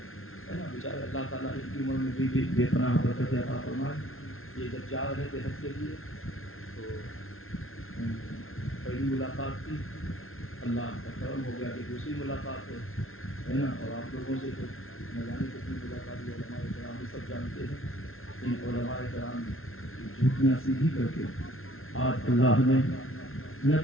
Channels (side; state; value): right; late; 0.61 ms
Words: بیچارے اللہ تعالیٰ ان کی عمر میں بھی بے پناہ برکت عطا فرمائے۔ یہ جب جا رہے تھے حج کے لیے تو پہلی ملاقات تھی، اللہ کا کرم ہو گیا کہ دوسری ملاقات ہے نا، اور آپ لوگوں سے تو نہ جانے کتنی ملاقات ہوئی، علماء کرام بھی سب جانتے ہیں۔ ان علماء کرام جھوٹیاں سیدھی کر کے آج اللہ نے